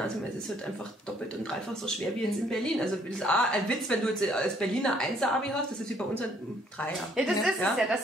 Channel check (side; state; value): both; normal; correlation 0.65